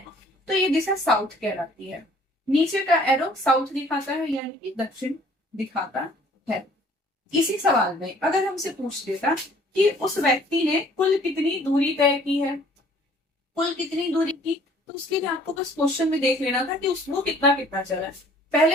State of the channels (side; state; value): both; normal; correlation 0.56